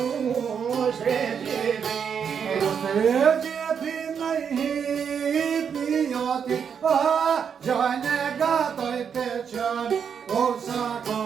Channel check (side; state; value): left; quieter; 7.2 dB